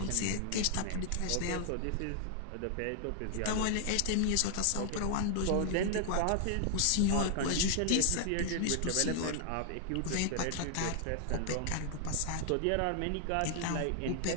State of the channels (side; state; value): both; different; correlation 0.00